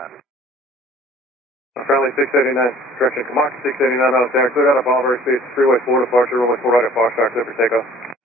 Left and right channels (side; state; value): both; normal; correlation 0.52